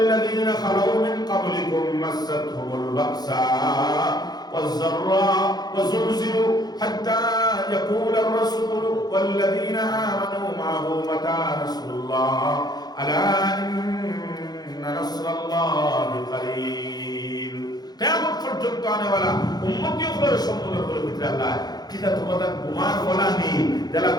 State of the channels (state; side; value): late; right; 0.19 ms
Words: লাযীনা খালাউ মিন ক্বাবলিকুম মাসাতহুমুল বাসা والضراء وزلزلوا حتى يقول الرسول والذين آمنوا معه متى نصر الله ألا إن نصر الله قريب কিয়ামত পর্যন্ত আনেওয়ালা উম্মতিগুলোর সম্মুখের ভিতরে আল্লাহ কিটা তোমাদের গুমান বলা নেই যারা